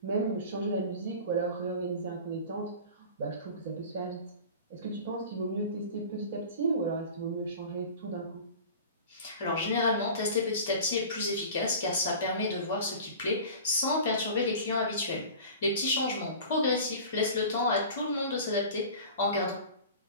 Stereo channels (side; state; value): both; inverted; correlation -0.38